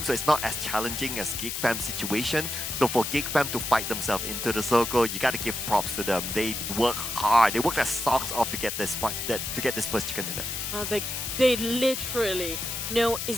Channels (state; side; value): noise; left; hiss, 4 dB below the sound